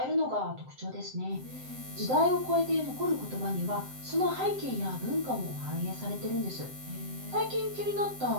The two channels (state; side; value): late; left; 7.7 ms